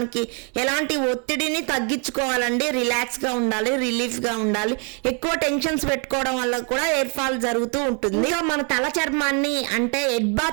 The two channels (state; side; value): quieter; left; 38.6 dB